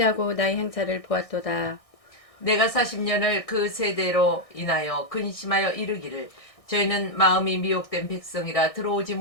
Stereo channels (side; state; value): right; late; 1.6 ms